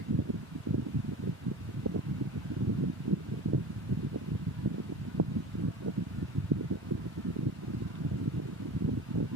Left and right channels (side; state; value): both; normal; correlation 0.35